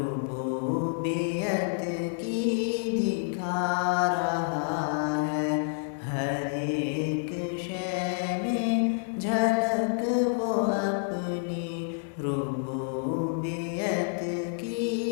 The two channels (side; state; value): right; silent; digital silence